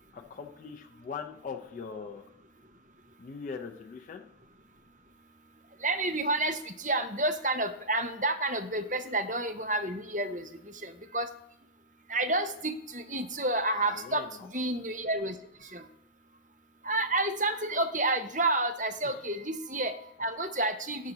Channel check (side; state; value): both; normal; correlation -0.20